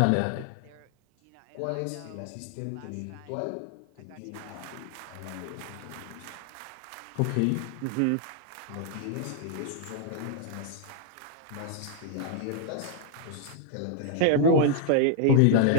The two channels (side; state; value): both; different; correlation 0.00